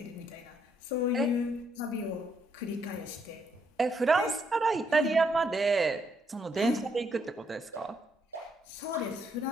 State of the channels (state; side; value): normal; both; correlation 0.74